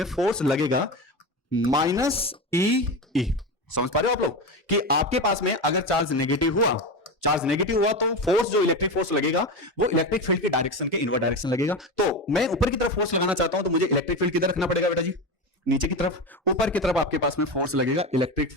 फोर्स लगेगा माइनस ई ई। समझ पा रहे हो आप लोग कि आपके पास में अगर चार्ज नेगेटिव हुआ तो फोर्स जो इलेक्ट्रिक फोर्स लगेगा वो इलेक्ट्रिक फील्ड की डायरेक्शन के इनवर्ट डायरेक्शन लगेगा। तो मैं ऊपर की तरफ फोर्स लगाना चाहता हूं तो मुझे इलेक्ट्रिक फील्ड किधर रखना पड़ेगा बेटा जी, नीचे की तरफ। ऊपर की तरफ आपके पास में फोर्स लगेगा इलेक्ट्रिक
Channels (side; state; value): both; normal; correlation 0.21